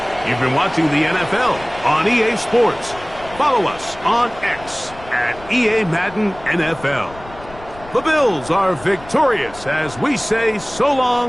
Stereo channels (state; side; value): noise; left; rumble, 19 dB below the sound